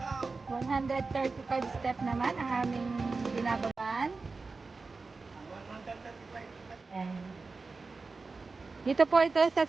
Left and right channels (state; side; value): quieter; left; 4.0 dB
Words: 135 step naman ang aming binababaan. Ayan. Dito po ito sa